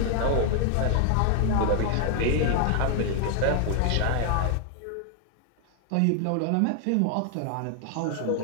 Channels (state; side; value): different; both; correlation 0.00